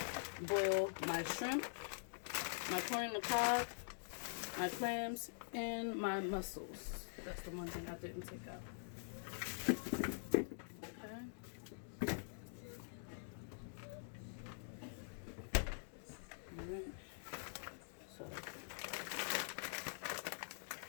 boil my shrimp, my corn on the cob, my clams, and my mussels. That's the one thing I didn't take out. Okay. Alright. So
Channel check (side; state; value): right; silent; digital silence